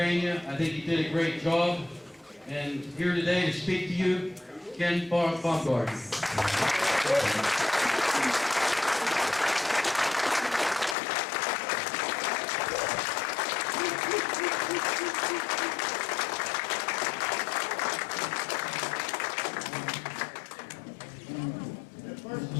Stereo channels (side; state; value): right; drops out; at 11.0 s